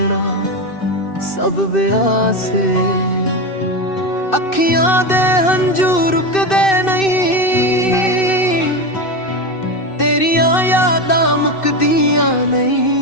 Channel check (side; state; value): right; late; 2.6 ms